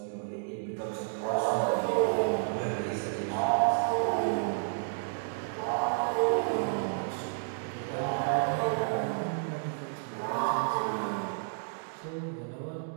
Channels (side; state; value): left; silent; digital silence